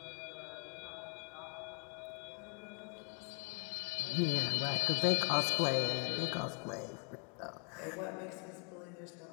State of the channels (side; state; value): right; quieter; 36.8 dB